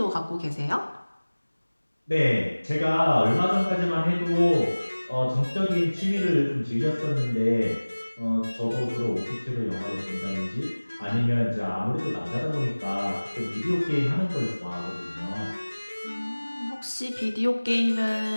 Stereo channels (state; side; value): inverted; both; correlation -1.00